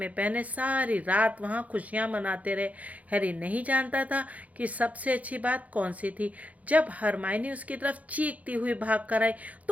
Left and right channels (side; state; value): left; late; 0.071 ms